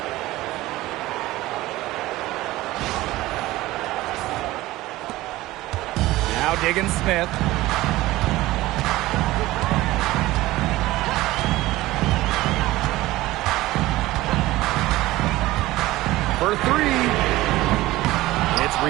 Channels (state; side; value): quieter; left; 17.7 dB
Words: Now Diggins Smith. For 3. It's